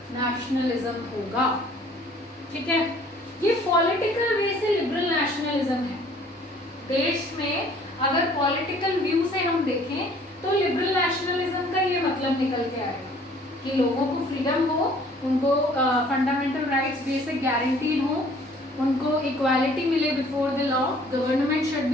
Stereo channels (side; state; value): both; normal; correlation 0.56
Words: नेशनलिज्म होगा। ठीक है, ये पॉलिटिकल वे से लिबरल नेशनलिज्म है। देश में अगर पॉलिटिकल व्यू से हम देखें तो लिबरल नेशनलिज्म का ये मतलब निकल के आएगा कि लोगों को फ्रीडम हो, उनको फंडामेंटल राइट्स बेसिक गारंटीड हो, उनको इक्वालिटी मिले before the law, government should